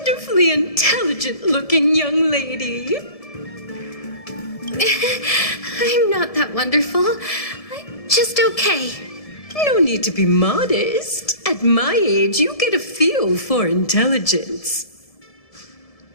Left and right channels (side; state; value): right; late; 1.7 ms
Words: intelligent-looking young lady. I'm not that wonderful. I'm just okay. No need to be modest. At my age, you get a feel for intelligence.